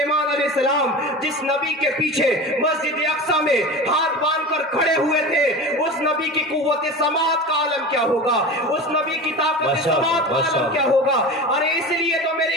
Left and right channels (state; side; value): normal; both; correlation 0.31